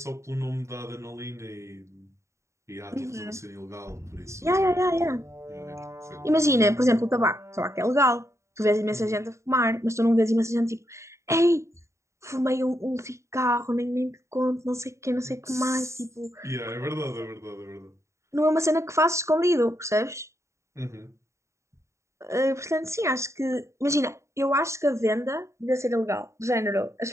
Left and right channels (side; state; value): left; late; 0.14 ms